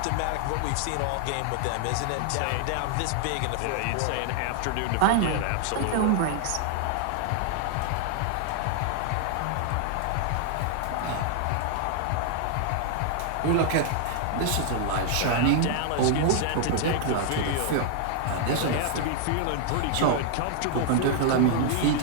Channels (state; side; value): different; both; correlation 0.00